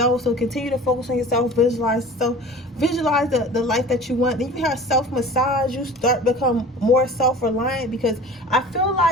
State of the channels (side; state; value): both; normal; correlation 0.40